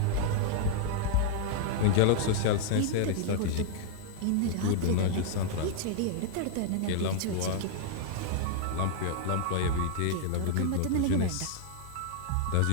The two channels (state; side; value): different; both; correlation 0.00